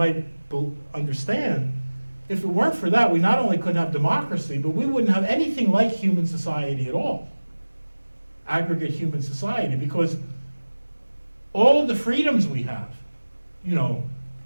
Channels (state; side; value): inverted; both; correlation -1.00